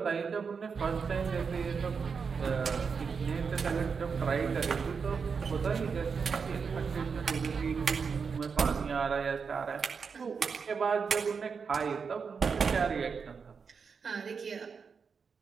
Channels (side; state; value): left; quieter; 5.7 dB